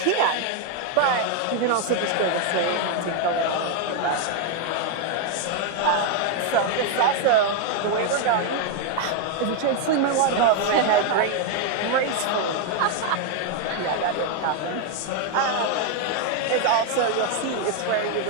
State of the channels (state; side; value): different; both; correlation 0.01